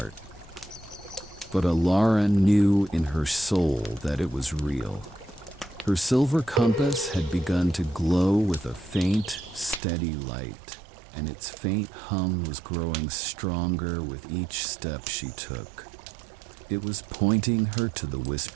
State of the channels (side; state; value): left; drops out; at 9.8 s